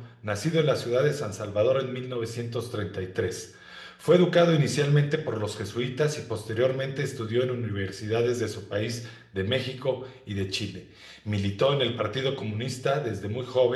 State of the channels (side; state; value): both; identical; correlation 1.00